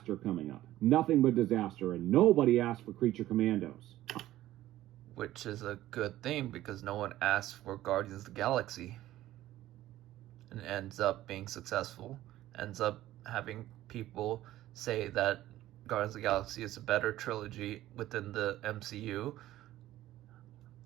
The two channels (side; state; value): left; quieter; 14.6 dB